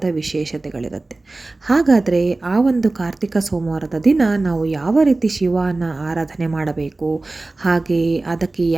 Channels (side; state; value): left; quieter; 3.1 dB